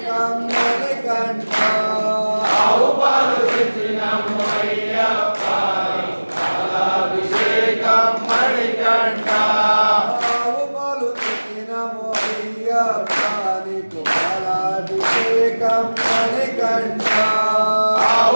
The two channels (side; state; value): both; inverted; correlation -1.00